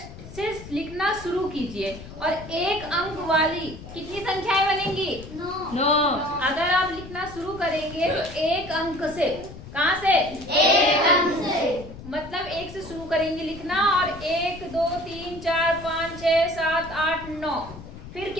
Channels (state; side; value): noise; left; rumble, 15 dB below the sound